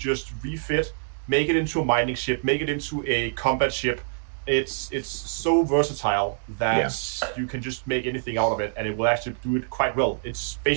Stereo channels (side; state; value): left; silent; digital silence